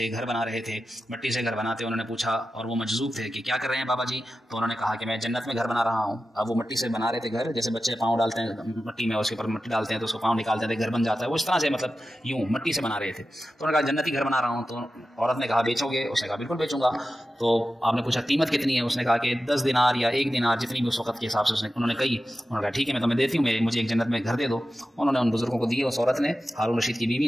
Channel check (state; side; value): normal; both; correlation 0.93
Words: گھر بنا رہے تھے، مٹی سے گھر بناتے انہوں نے پوچھا، اور وہ مجذوب تھے کہ کیا کر رہے ہیں بابا جی؟ تو انہوں نے کہا کہ میں جنت میں گھر بنا رہا ہوں۔ اب وہ مٹی سے بنا رہے تھے گھر، جیسے بچے پاؤں ڈالتے ہیں مٹی میں، اس کے اوپر مٹی ڈالتے ہیں تو اس کو پاؤں نکالتے ہیں، گھر بن جاتا ہے، وہ اس طرح سے مطلب یوں مٹی سے بنا رہے تھے۔ تو انہوں نے کہا جنتی گھر بنا رہا ہوں۔ تو عورت نے کہا بیچو گے؟ اس نے کہا بالکل بیچوں گا۔ تو آپ نے پوچھا قیمت کتنی ہے؟ اس نے کہا کہ 10 دینار یا 1 دینار، جتنی بھی اس وقت کے حساب سے انہوں نے کہی۔ انہوں نے کہا ٹھیک ہے میں تمہیں دیتی ہوں، مجھے ایک جنت میں گھر دے دو۔ انہوں نے ان بزرگوں کو دیے، اس عورت نے، ہارون رشید کی بیوی